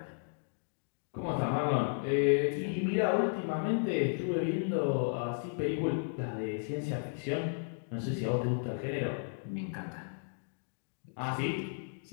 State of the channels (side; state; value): right; silent; digital silence